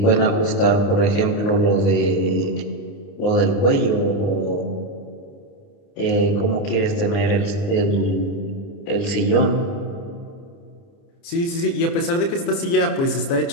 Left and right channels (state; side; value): late; right; 30 ms